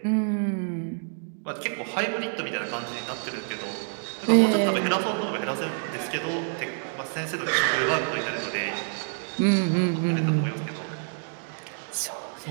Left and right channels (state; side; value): silent; left; 59 dB below the other